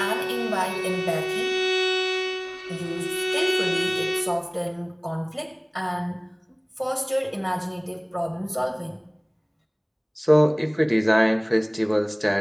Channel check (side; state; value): both; identical; correlation 1.00